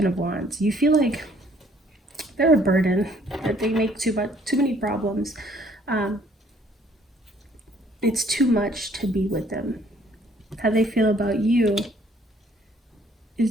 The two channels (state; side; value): normal; both; correlation 0.61